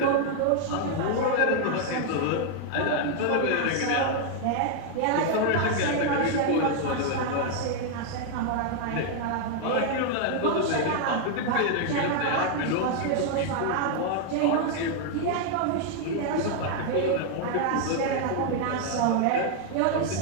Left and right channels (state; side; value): different; both; correlation 0.00